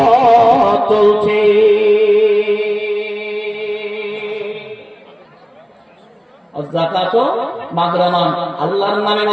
চলছে। যাকাত মাগরামান, আল্লাহর নামে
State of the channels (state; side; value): identical; both; correlation 1.00